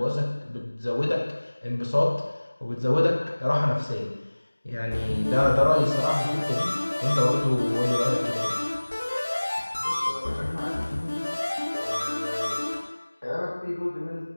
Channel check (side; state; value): both; inverted; correlation -1.00